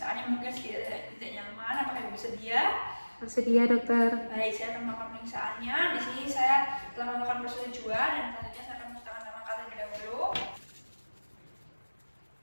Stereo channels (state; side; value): inverted; both; correlation -1.00